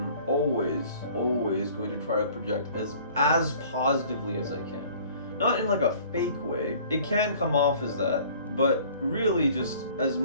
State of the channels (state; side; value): inverted; both; correlation -0.51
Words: always going to try to project as positively as I can. Not in like a fake way. It can come off as that, but really just as